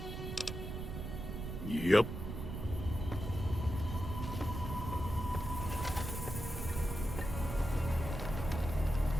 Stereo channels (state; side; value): noise; right; rumble, 6 dB below the sound